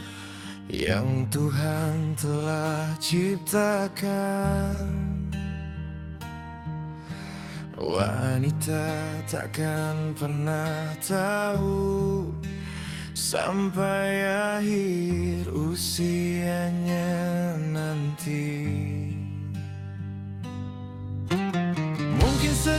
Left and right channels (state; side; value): identical; both; correlation 1.00